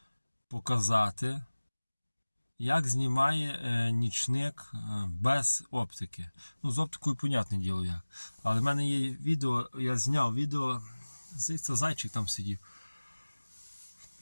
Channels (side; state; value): both; inverted; correlation -1.00